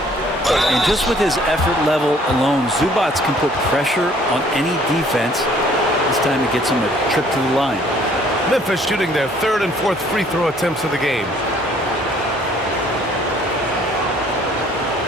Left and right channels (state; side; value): normal; both; correlation 0.59